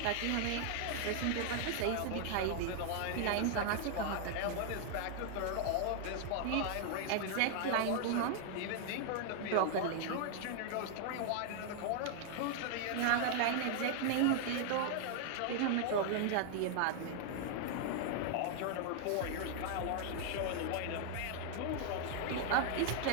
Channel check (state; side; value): different; both; correlation 0.00